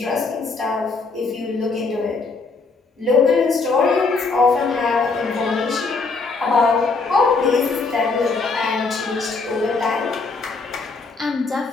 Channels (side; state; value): right; quieter; 4.1 dB